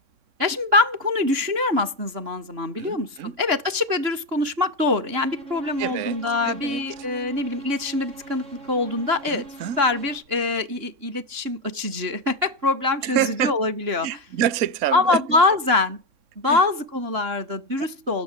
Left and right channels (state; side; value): late; left; 3.6 ms